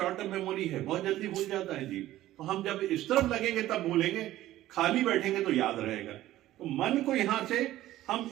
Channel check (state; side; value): quieter; left; 14.7 dB